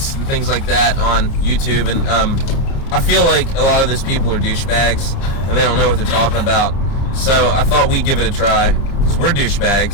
and things like that on YouTube, and I feel like a lot of these people are douchebags, and they don't know what they're talking about. So I thought we'd give it a try, because we're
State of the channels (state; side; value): late; right; 30 ms